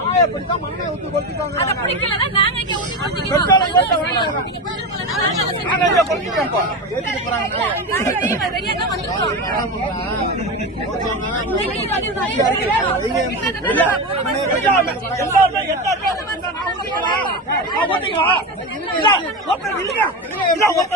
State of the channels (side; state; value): both; normal; correlation 0.20